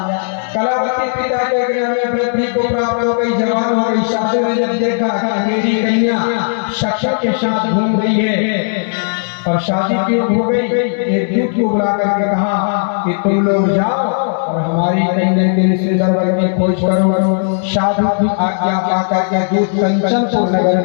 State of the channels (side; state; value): right; silent; digital silence